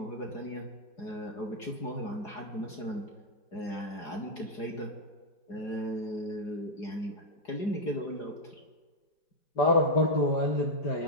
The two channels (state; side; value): late; right; 4.9 ms